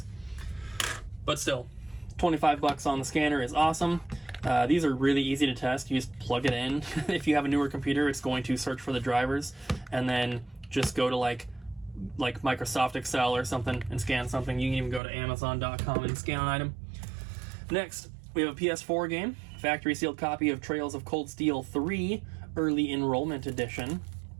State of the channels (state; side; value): drops out; left; at 15.0 s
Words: But still, 25 bucks on the scanner is awesome. These are really easy to test. You just plug it in. If you have a newer computer, it's going to search for the drivers, and then just go to like Microsoft Excel or something and scan something. You can even go to Amazon.com and scan an item. Next, we have a PS4 game, factory sealed copy of Trails of Cold Steel 3 Early Enrollment Edition.